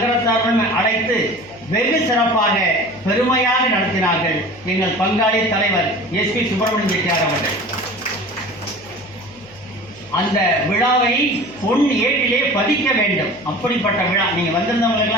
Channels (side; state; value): left; noise; hum, 25 dB below the sound